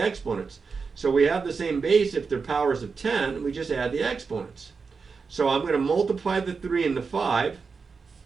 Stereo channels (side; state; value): left; quieter; 5.0 dB